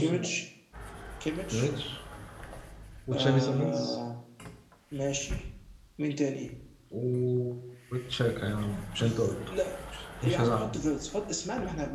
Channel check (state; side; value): identical; both; correlation 1.00